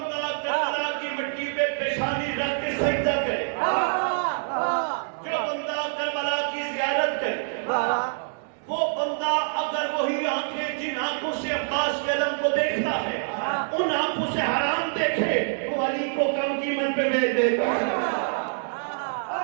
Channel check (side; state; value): left; silent; digital silence